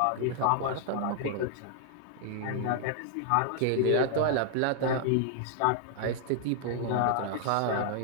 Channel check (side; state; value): both; different; correlation 0.00